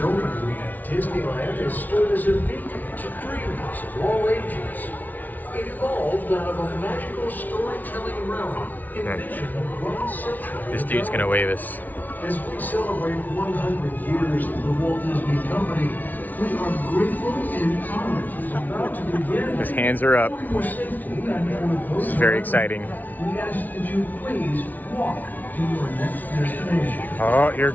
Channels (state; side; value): late; right; 0.080 ms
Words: Disneyland has stood as a beacon to dreamers of all ages. It evolved out of a magical storytelling realm envisioned 1 century. This dude's gonna wave us. As we celebrate 100 years of the Walt Disney Company, we are grateful and honored to be about to begin. His hands are up. For your safety and for This is very exciting. we ask that you please walk to your next destination. Oh, here